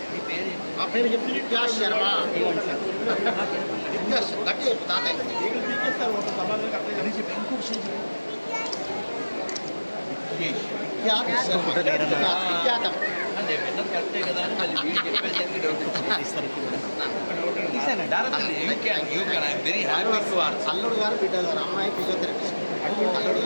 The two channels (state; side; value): inverted; both; correlation -1.00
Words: మా పేరు చెప్పి విద్యాస్ శర్మ విద్యాస్ గట్టి చెప్పు తాతయ్య విఖ్యాతం అల్లుడు గారు బిడ్డ గారు అమ్మాయి ఫిజియోథెరపిస్ట్ అల్లుడు